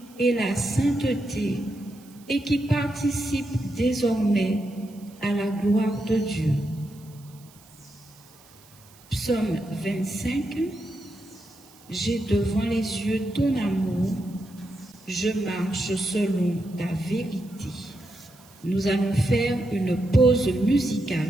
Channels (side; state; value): right; noise; hiss, 25 dB below the sound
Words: et la sainteté et qui participent désormais à la gloire de Dieu. Psaume 25, j'ai devant les yeux ton amour, je marche selon ta vérité. Nous allons faire une pause